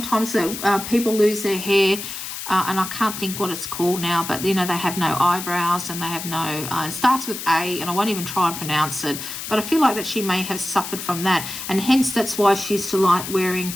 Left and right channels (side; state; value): left; noise; hiss, 8 dB below the sound